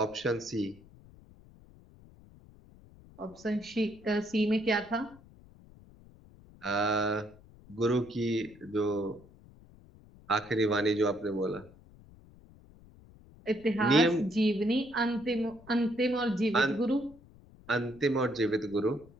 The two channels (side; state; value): left; noise; rumble, 23 dB below the sound